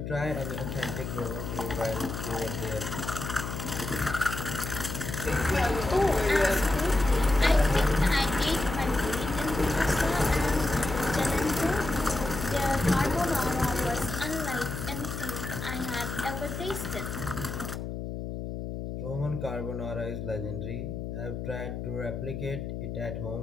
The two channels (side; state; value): left; noise; hum, 6 dB below the sound